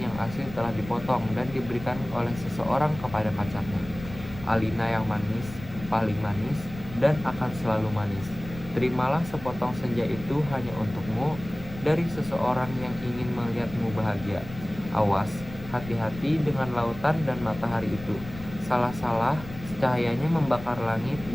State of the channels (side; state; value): left; noise; rumble, 14 dB below the sound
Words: yang asli telah dipotong dan diberikan oleh seseorang kepada pacarnya. Alina yang manis, paling manis, dan akan selalu manis. Terimalah sepotong senja itu hanya untukmu dari seseorang yang ingin melihatmu bahagia. Awas, hati-hati dengan lautan dan matahari itu. Salah-salah, cahayanya membakar langit